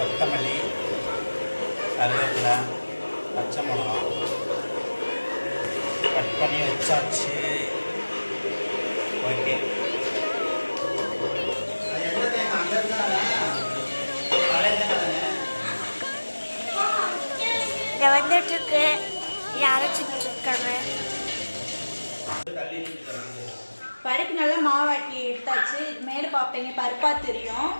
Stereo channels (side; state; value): both; inverted; correlation -1.00